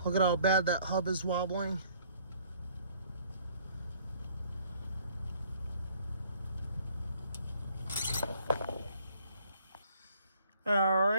Look at how bad that hub is wobbling. All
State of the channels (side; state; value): both; inverted; correlation -0.60